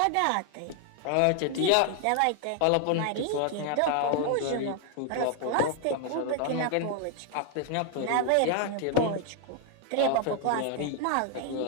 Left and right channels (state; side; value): different; both; correlation 0.00